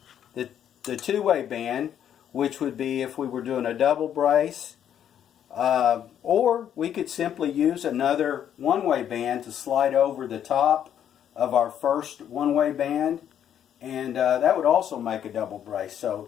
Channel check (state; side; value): quieter; right; 9.7 dB